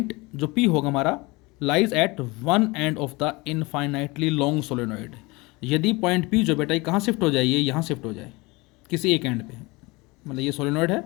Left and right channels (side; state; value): right; quieter; 24.2 dB